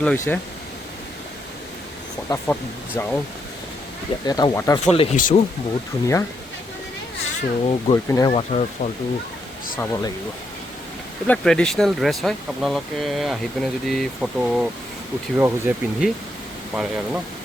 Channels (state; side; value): normal; both; correlation 0.78